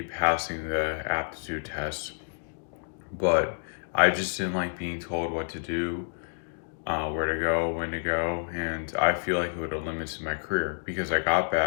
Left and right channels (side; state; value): right; silent; digital silence